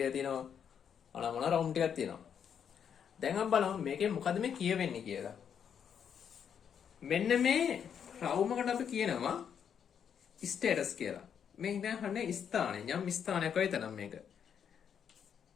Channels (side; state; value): right; quieter; 7.9 dB